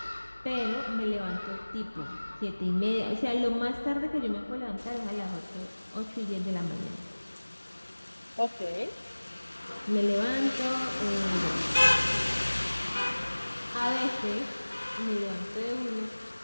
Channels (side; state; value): both; inverted; correlation -1.00